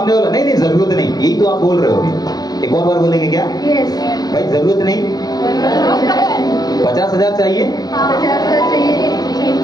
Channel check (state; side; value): late; right; 0.19 ms